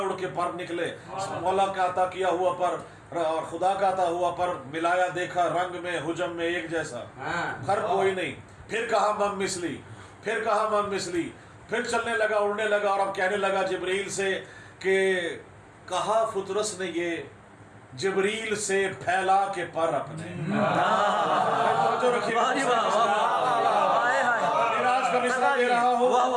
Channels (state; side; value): identical; both; correlation 1.00